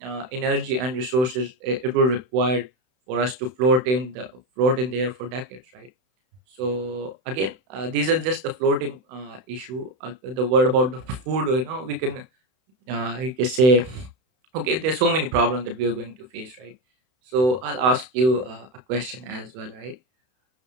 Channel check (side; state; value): left; late; 31 ms